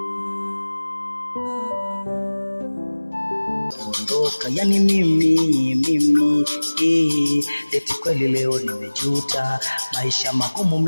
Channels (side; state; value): both; inverted; correlation -1.00